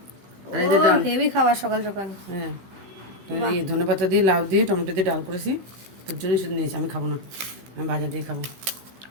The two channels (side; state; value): left; late; 15 ms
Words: আর ও এদের ডাল। হেভি খাবার সকাল সকাল। হ্যাঁ, এই ধনেপাতা দিয়ে, লাউ দিয়ে, টমেটো দিয়ে ডাল করেছি। তোর জন্যই শুধু নিয়েছি, আমি খাবো না, আমি ভাজা দিয়ে খাবো।